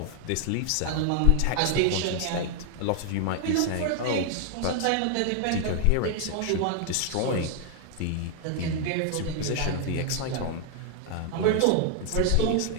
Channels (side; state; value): both; different; correlation 0.00